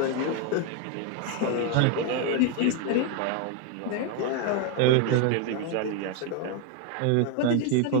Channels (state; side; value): different; both; correlation 0.02